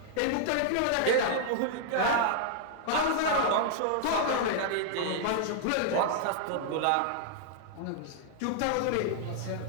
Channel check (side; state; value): both; different; correlation -0.01